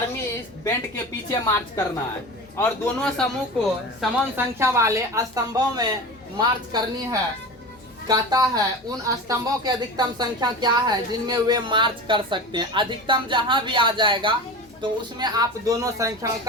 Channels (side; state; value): both; normal; correlation 0.30